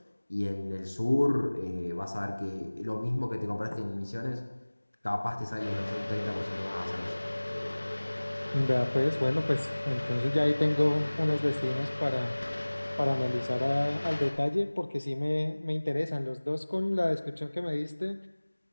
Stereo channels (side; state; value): both; inverted; correlation -1.00